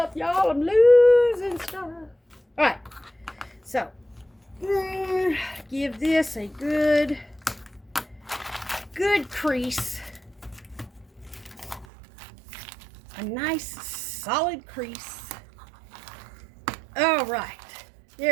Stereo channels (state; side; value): drops out; left; at 11.9 s